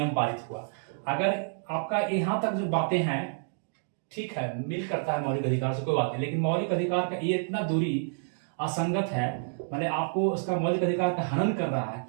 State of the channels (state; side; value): silent; left; digital silence